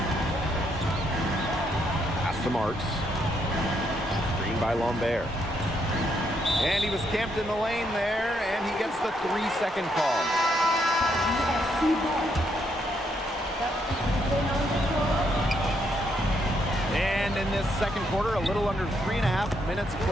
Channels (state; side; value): normal; both; correlation 0.75